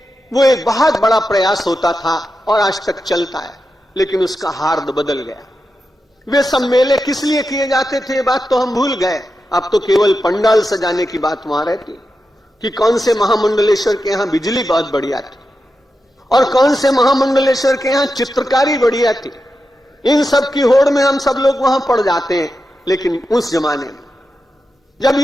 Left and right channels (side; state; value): both; normal; correlation 0.89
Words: वो एक बहुत बड़ा प्रयास होता था और आज तक चलता है। लेकिन उसका हार्द बदल गया। वे सब मेले किस लिए किए जाते थे, बात तो हम भूल गए। अब तो केवल पंडाल सजाने की बात वहां रहती कि कौन से महामंडलेश्वर के यहां बिजली बहुत बढ़िया थी और कौन से महामंडलेश्वर के यहां चित्रकारी बढ़िया थी। इन सब की होड़ में हम सब लोग वहां पड़ जाते हैं। लेकिन उस जमाने में जब